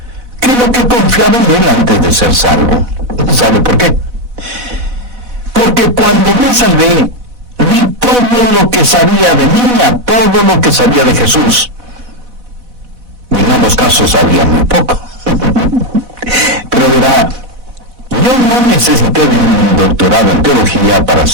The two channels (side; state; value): left; late; 4.1 ms